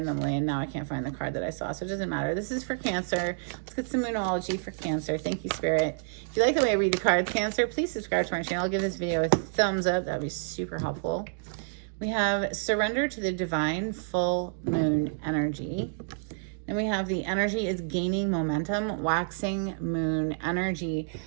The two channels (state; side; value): silent; left; digital silence